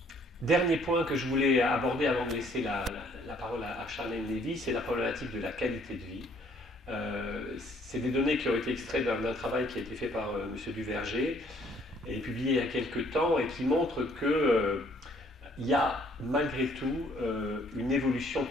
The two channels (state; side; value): normal; both; correlation 0.62